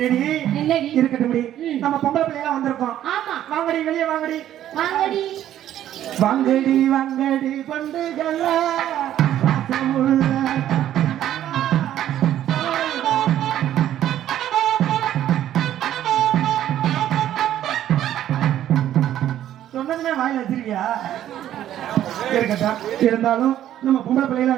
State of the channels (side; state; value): left; quieter; 11.8 dB